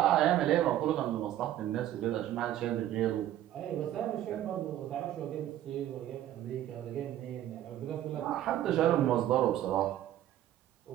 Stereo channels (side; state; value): left; quieter; 12.5 dB